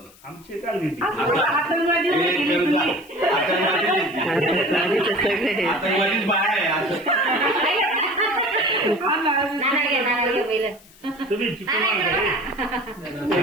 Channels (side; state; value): left; noise; hiss, 25 dB below the sound